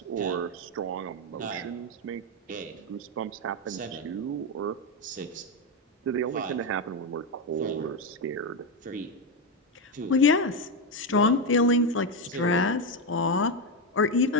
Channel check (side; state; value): both; normal; correlation 0.09